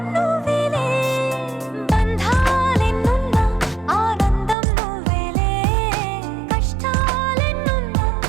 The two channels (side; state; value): left; drops out; at 4.5 s